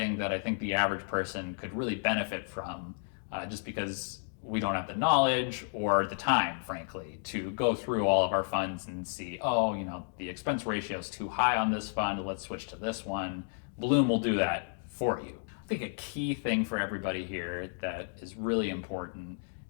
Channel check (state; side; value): silent; right; digital silence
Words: that I think the average person could really benefit from, just because we don't have the knowledge or the time, frankly, to go through all of our funds and see, oh, the expense ratio is too high on this fund, let's switch to this one. Blooom will do that for you. I think a key thing for everybody here that is really important